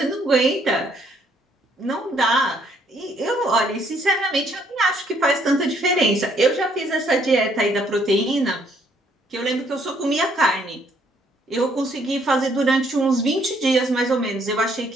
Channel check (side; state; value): both; normal; correlation 0.67